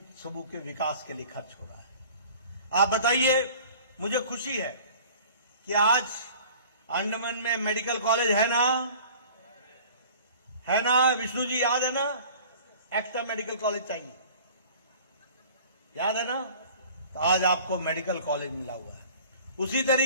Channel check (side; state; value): both; inverted; correlation -0.46